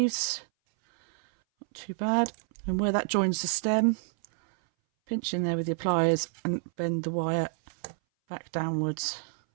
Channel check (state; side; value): silent; left; 59 dB below the other